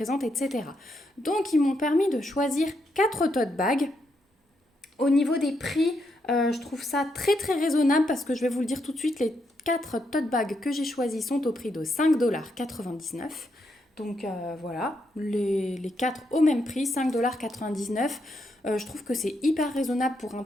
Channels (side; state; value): both; normal; correlation 0.80